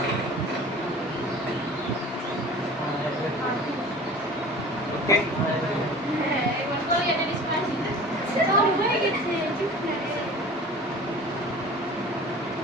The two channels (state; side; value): normal; both; correlation 0.41